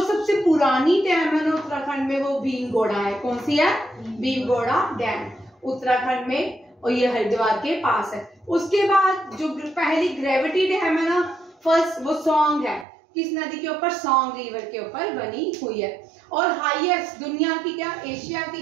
सबसे पुरानी डैम है ना उत्तराखंड में वो भीमगोड़ा है। कौन सी है? भीमगोड़ा डैम उत्तराखंड में, और ये हरिद्वार के पास है। उसके बाद जो पहली ग्रेविटी डैम है ना, फर्स्ट, वो सॉन्ग है। किस नदी के ऊपर? सॉन्ग रिवर के ऊपर बनी हुई है। और हाईएस्ट दुनिया की, क्या एशिया की,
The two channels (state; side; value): drops out; left; at 12.9 s